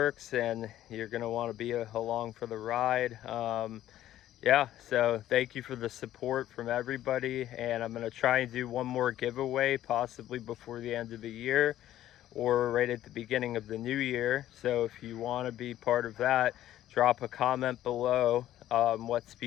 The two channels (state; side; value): quieter; right; 13.0 dB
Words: and you're going to want to be along for the ride. Yeah, so thank you for the support from everybody, and I'm going to try and do one more giveaway possibly before the end of the year or right at the beginning of the new year. So if you want to be part of that, drop a comment below what